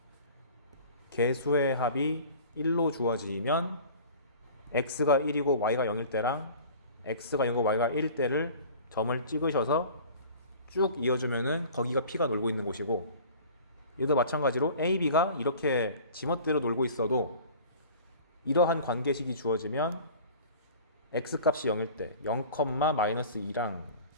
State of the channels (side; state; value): both; inverted; correlation -0.43